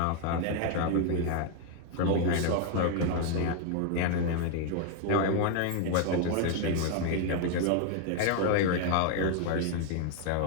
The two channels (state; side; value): different; both; correlation 0.00